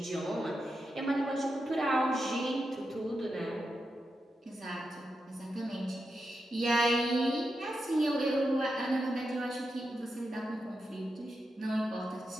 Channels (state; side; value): normal; both; correlation 0.87